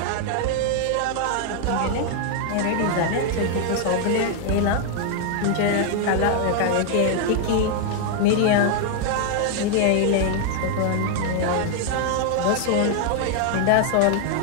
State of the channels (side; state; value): both; different; correlation 0.00